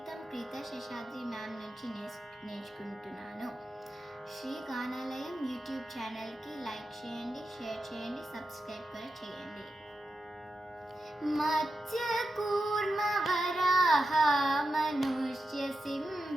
ప్రీత శేషాద్రి మ్యామ్ నుంచి నేర్చుకుంటున్నాను. శ్రీ గానాలయం యూట్యూబ్ ఛానల్కి లైక్ చేయండి, షేర్ చేయండి, సబ్స్క్రైబ్ కూడా చేయండి. మత్స్యకూర్మ వరాహ మనుష్య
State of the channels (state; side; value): normal; both; correlation 0.89